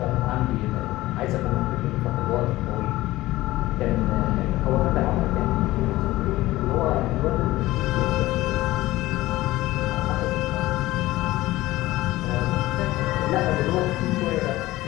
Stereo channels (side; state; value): right; quieter; 17.5 dB